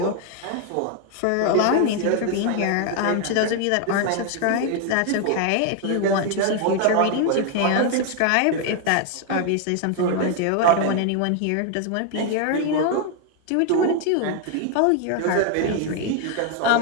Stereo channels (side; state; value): both; different; correlation 0.01